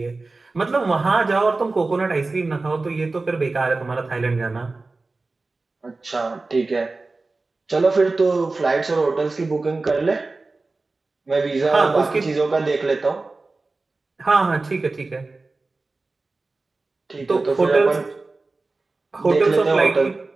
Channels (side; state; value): left; quieter; 3.5 dB